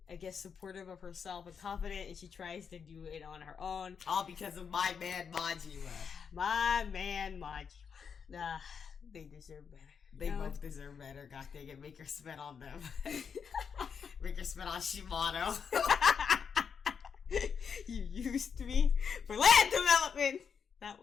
I guess, supportive of herself and confident, and she tries to do it on her own. All because of my man Majima. My man Majima. Nah, they deserve better. They both deserve better. God dang it, make her spit on them. Make her spit on Shimano. You used me for land development. That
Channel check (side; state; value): right; quieter; 6.6 dB